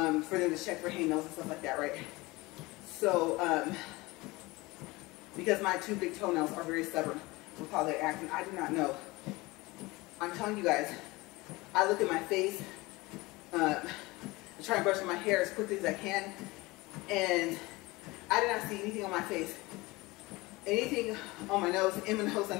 them to check for hangnails and stuff like that, right? So, because my 2 big toenails are very stubborn with how they act, and I do not know. I'm telling you guys, I look at my face, I try and brush my hair as quickly as I can, and I did not see anything on my face. Anything on my nose, in my nose, I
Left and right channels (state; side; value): quieter; right; 22.1 dB